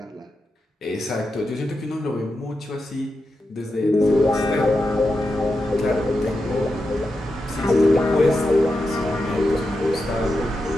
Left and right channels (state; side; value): normal; both; correlation 0.88